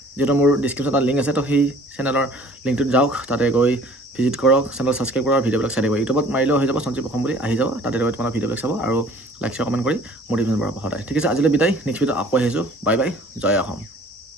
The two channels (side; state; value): both; normal; correlation 0.52